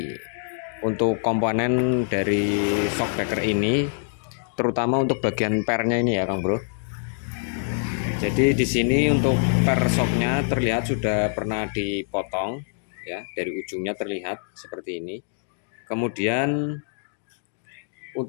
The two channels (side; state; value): right; silent; digital silence